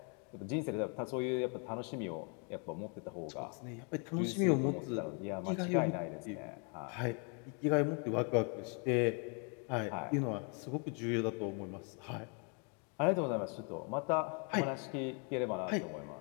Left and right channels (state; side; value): quieter; right; 37.6 dB